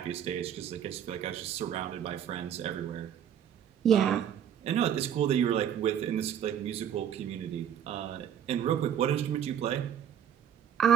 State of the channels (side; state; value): left; quieter; 9.4 dB